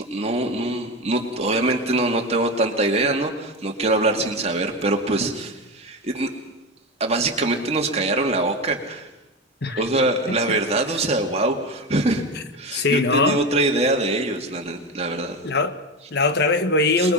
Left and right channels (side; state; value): both; normal; correlation 0.19